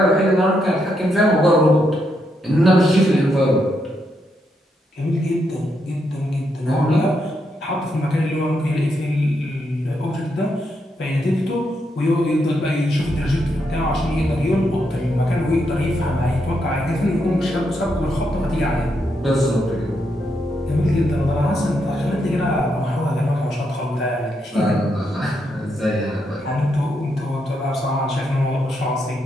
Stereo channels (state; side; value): normal; both; correlation 0.80